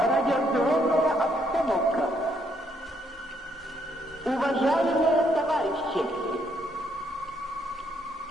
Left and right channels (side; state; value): both; normal; correlation 0.72